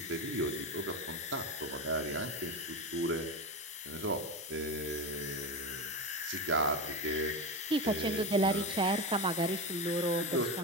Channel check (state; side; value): normal; both; correlation 0.19